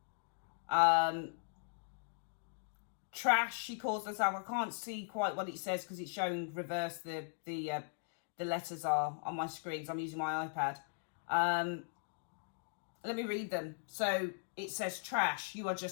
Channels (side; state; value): right; silent; digital silence